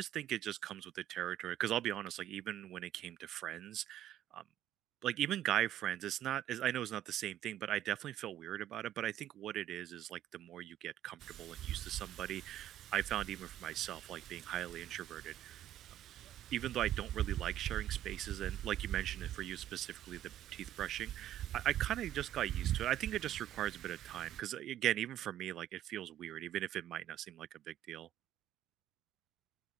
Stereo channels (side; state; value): left; quieter; 12.2 dB